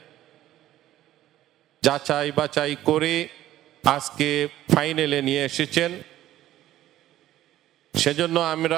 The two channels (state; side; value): quieter; left; 13.8 dB